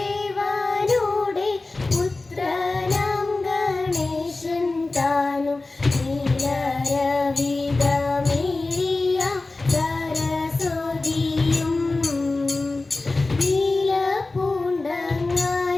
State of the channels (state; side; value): quieter; right; 3.3 dB